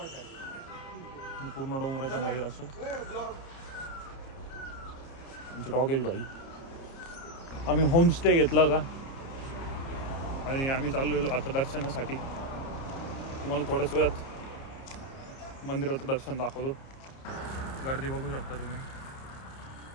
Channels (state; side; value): late; right; 30 ms